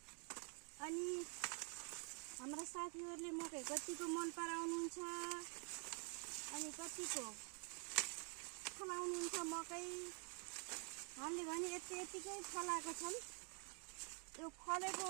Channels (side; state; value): left; quieter; 37.5 dB